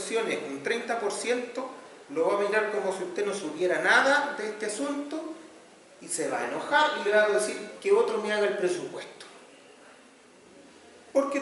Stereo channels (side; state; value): both; identical; correlation 1.00